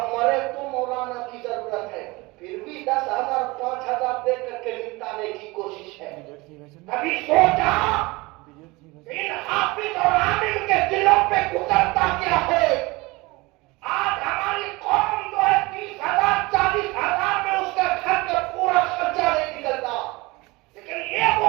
मरे तो मौलाना की जरूरत है। फिर भी 10,000 5,000 दे करके निपटाने की कोशिश है। अभी सोचा इन हाफिज और आलिम के दिलों पे गुजरता क्या है। आज हमारी कौम जो है 30,000 40,000 में उसका घर का पूरा खर्चा नहीं निकलता, लेकिन ये वो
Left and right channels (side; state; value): left; quieter; 23.3 dB